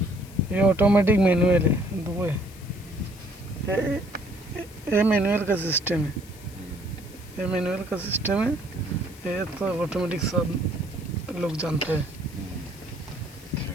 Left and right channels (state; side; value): noise; left; hiss, 21 dB below the sound